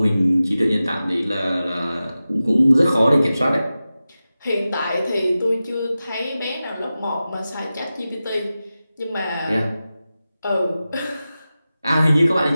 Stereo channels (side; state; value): both; inverted; correlation -0.94